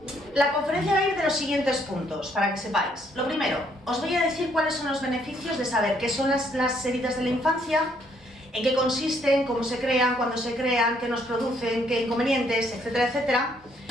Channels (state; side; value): normal; both; correlation 0.69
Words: La conferencia va a ir de los siguientes puntos, para que sepáis. Lo primero, os voy a decir cuáles son los beneficios de saber qué son las heridas de la infancia, en qué consisten, cómo se crean, cuándo se crean, qué nos producen, qué inconvenientes, etcétera, etcétera.